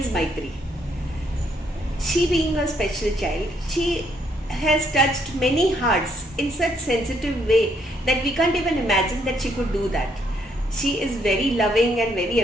Maitri. She being a special child, she has touched many hearts in such sensitive way that we can't even imagine that she could do that. She is very loving and very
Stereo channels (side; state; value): both; normal; correlation 0.72